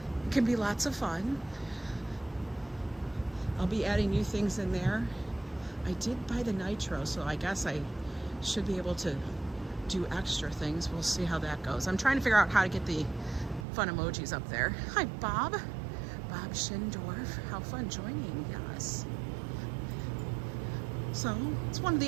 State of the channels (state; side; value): drops out; left; at 13.7 s